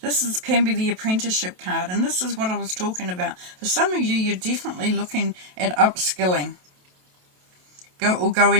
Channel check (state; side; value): late; left; 27 ms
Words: This can be the apprenticeship card, and this is what I was talking about. For some of you, you're definitely looking at upskilling,